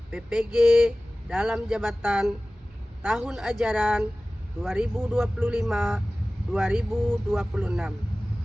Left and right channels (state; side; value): normal; both; correlation 0.97